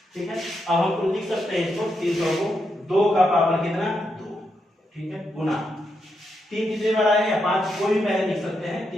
ठीक है। अब हम लिख सकते हैं इसको 300 को 2 का पावर कितना, 2, ठीक है, गुना 3 कितने बार आएगा, 5, कोई भी पहले लिख सकते हैं,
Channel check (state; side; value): normal; both; correlation 0.82